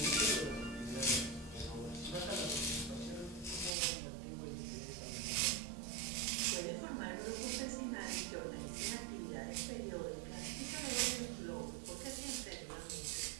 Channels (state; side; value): drops out; left; at 3.8 s